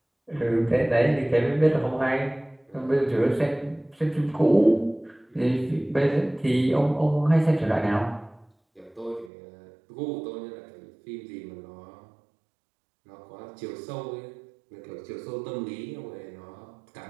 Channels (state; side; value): drops out; left; at 9.3 s